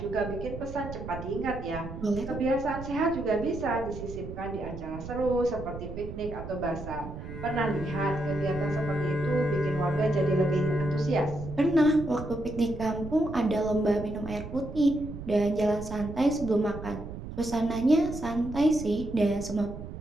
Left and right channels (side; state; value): right; noise; rumble, 10 dB below the sound